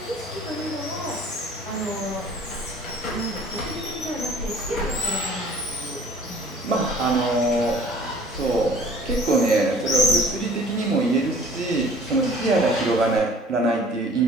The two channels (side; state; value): both; normal; correlation 0.50